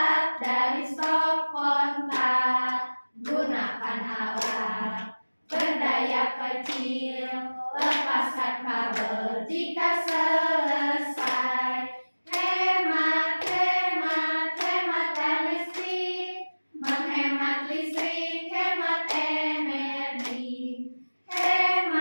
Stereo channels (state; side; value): inverted; both; correlation -1.00